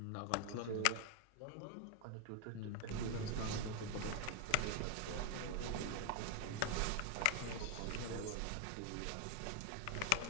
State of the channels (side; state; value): both; different; correlation 0.00